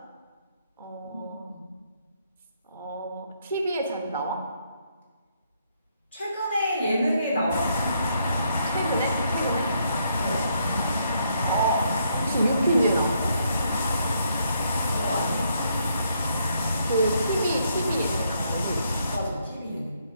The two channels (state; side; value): inverted; both; correlation -0.73